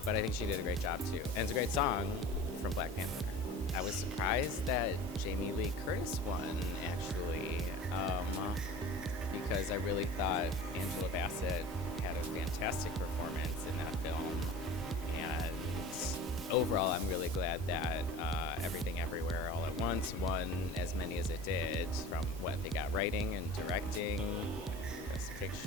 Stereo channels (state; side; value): normal; both; correlation 0.39